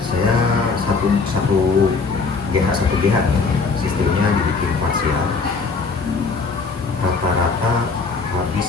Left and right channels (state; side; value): quieter; right; 4.5 dB